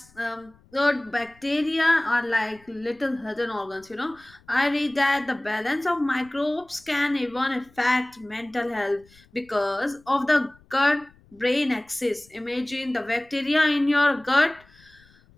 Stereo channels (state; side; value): noise; left; rumble, 29 dB below the sound